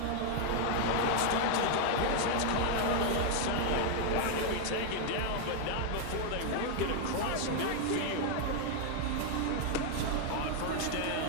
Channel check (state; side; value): different; both; correlation 0.00